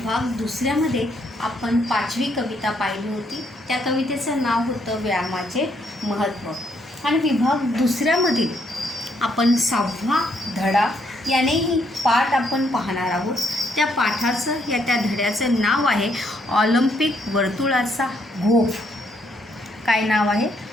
दुसऱ्यामध्ये आपण 5वी कविता पाहिली होती. त्या कवितेचं नाव होतं व्यायामाचे महत्त्व. आणि विभाग दुसऱ्यामधील आपण 6वा धडा यानेही पाठ आपण पाहणार आहोत. त्या पाठाचं त्या धड्याचं नाव आहे ऑलिम्पिक वर्तुळाचा गोफ. काय नाव आहे?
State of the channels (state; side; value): normal; both; correlation 0.72